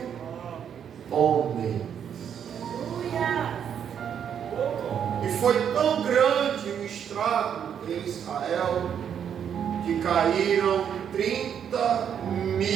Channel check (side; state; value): left; quieter; 8.4 dB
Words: homens. E foi tão grande o estrago em Israel, que caíram